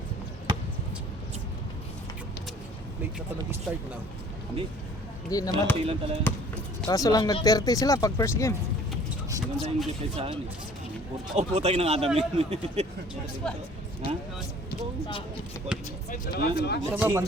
Late na pa nag-start na. Hindi. Hindi naman. Konti lang talaga. Kaso lang nag-30 sila pag first game. Maganda yung defense sa akin eh. Oh, putay ng Adam yun. Ha? Sa ba,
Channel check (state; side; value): normal; both; correlation 0.53